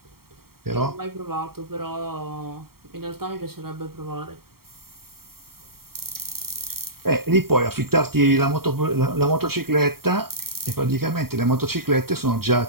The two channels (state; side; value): late; left; 0.94 ms